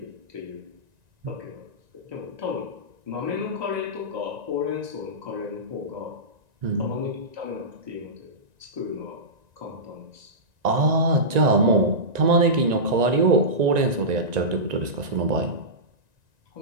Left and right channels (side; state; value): left; late; 1.9 ms